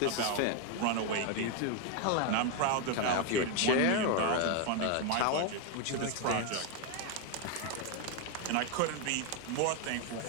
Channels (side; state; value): both; different; correlation 0.01